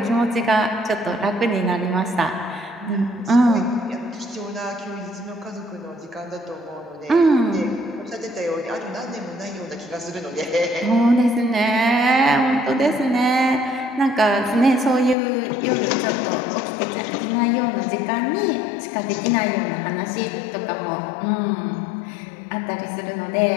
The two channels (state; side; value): drops out; right; at 15.2 s